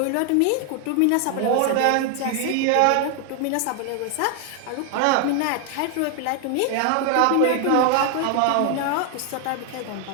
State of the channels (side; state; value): both; different; correlation 0.00